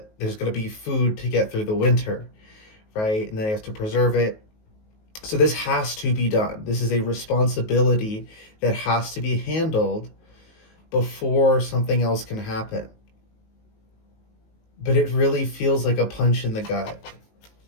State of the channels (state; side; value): late; right; 19 ms